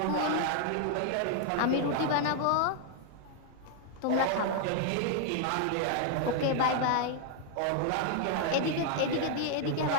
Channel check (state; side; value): different; both; correlation 0.00